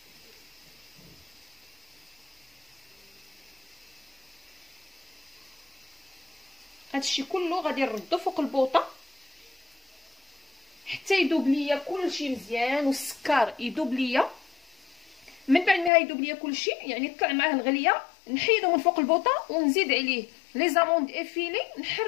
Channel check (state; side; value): drops out; right; at 15.9 s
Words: هادشي كله غادي نردو فوق البوطه حتى يذوب ليا كلشي مزيان والسكر يذوب ليا. من بعد ما يذوب ليا كلشي يعني طلع معاه الغليه، نحيدو من فوق البوطه ونزيد عليه لي زاموند افيلي،